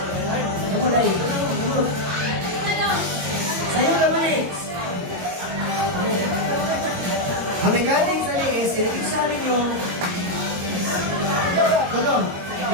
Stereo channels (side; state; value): left; late; 22 ms